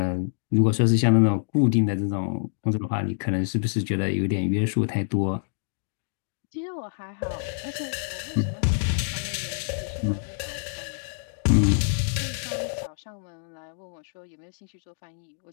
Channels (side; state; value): right; silent; digital silence